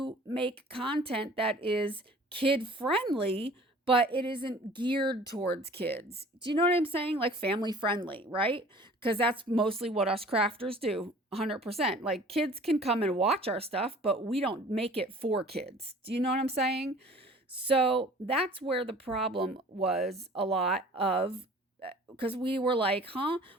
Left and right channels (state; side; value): normal; both; correlation 0.48